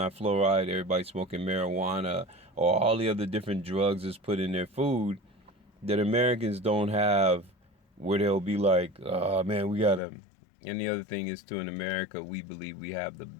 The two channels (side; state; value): right; drops out; at 10.0 s